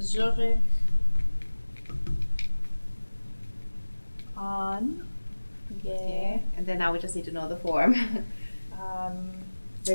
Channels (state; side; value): inverted; both; correlation -1.00